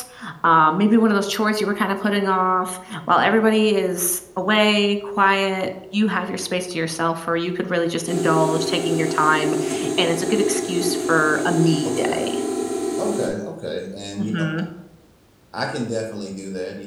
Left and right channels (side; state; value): both; identical; correlation 1.00